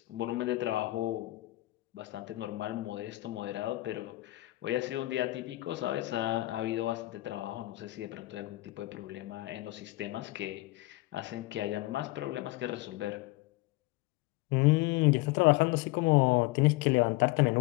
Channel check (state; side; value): quieter; right; 19.6 dB